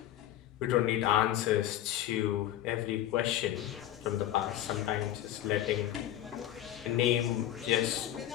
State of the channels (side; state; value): right; quieter; 12.7 dB